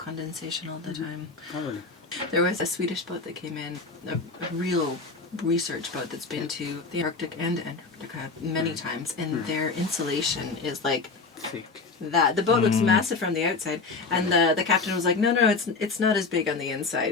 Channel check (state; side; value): quieter; right; 4.1 dB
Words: all the time. Oh, really? There was a Swedish boat that came in, a real research boat that's been to the Arctic and Antarctica many times, and their insulation is like Thick. that. The boat looks massive from the outside, and the captain was like, no, it's not as big on the